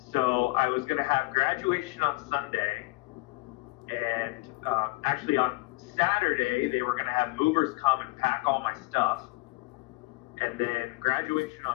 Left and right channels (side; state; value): right; quieter; 22.7 dB